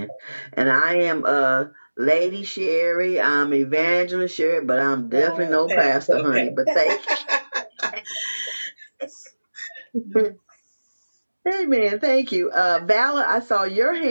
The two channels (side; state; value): both; inverted; correlation -1.00